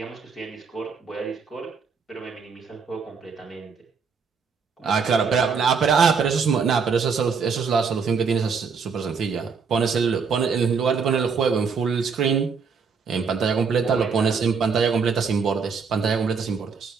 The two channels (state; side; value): quieter; left; 5.6 dB